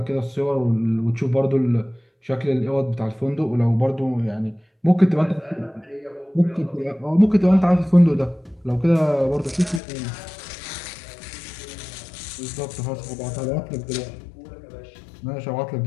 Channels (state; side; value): drops out; right; at 9.8 s